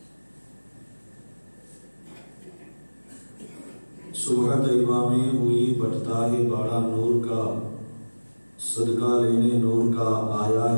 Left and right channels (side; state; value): both; inverted; correlation -1.00